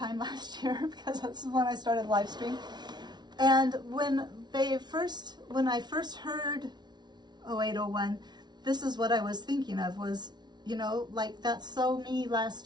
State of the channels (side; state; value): left; late; 0.20 ms